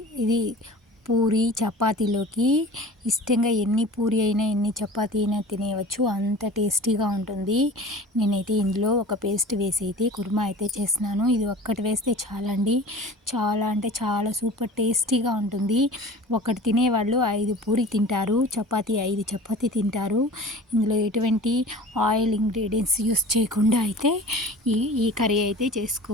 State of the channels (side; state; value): both; normal; correlation 0.40